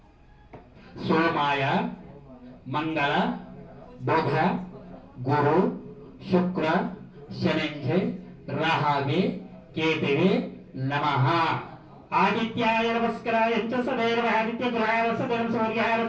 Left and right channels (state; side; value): identical; both; correlation 1.00